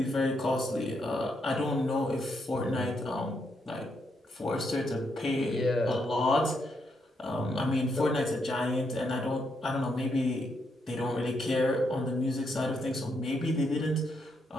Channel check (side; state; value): both; normal; correlation 0.79